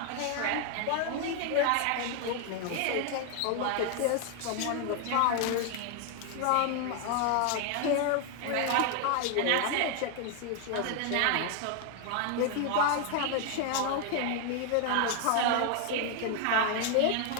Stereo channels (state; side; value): different; both; correlation 0.00